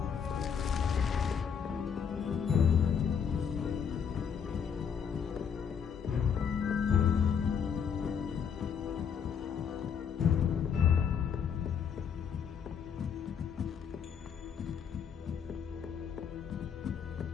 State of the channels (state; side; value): quieter; right; 7.2 dB